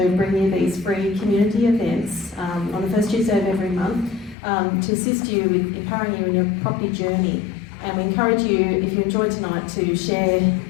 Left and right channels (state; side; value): drops out; right; at 4.4 s